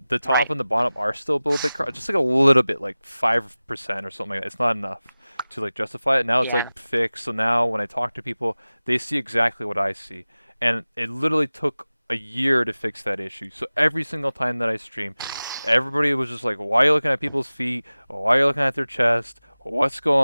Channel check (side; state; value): both; inverted; correlation -0.97